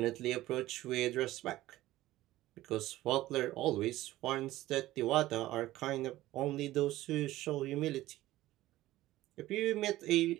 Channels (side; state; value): left; quieter; 16.1 dB